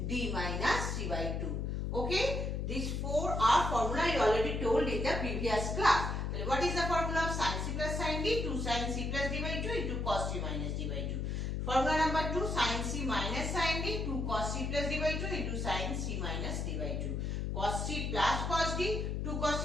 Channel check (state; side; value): noise; left; hum, 1 dB below the sound